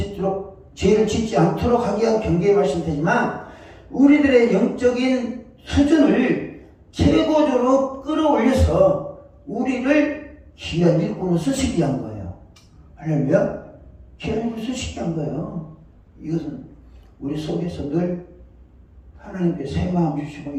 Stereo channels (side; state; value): both; identical; correlation 1.00